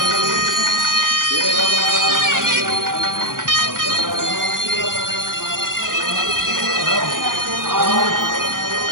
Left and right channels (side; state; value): left; late; 0.90 ms